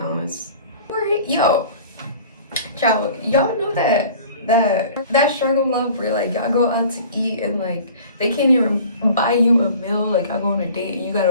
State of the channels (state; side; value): inverted; both; correlation -0.45